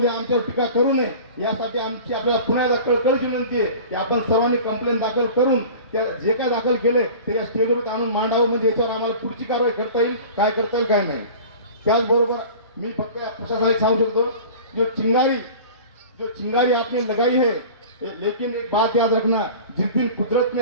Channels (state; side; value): inverted; both; correlation -0.39